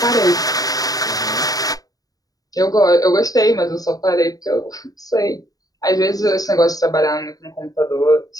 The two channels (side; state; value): right; late; 0.18 ms